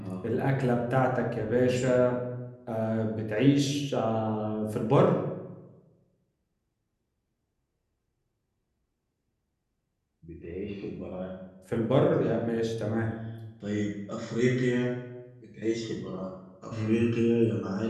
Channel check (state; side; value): identical; both; correlation 1.00